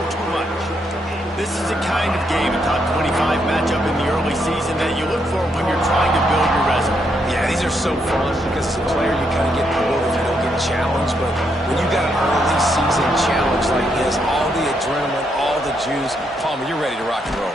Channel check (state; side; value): normal; both; correlation 0.77